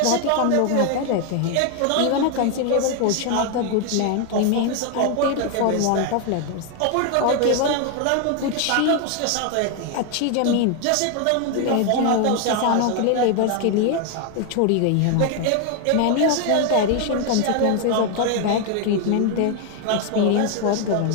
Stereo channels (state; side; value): different; both; correlation 0.01